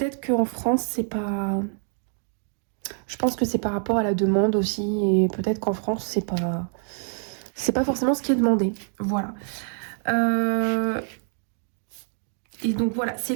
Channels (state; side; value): silent; left; 61 dB below the other